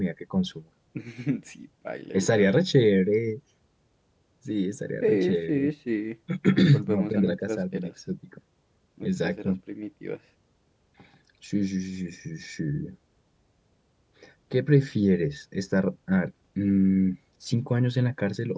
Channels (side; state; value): both; identical; correlation 1.00